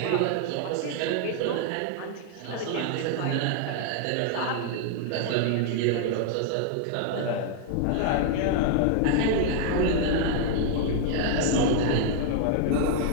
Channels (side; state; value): both; different; correlation 0.00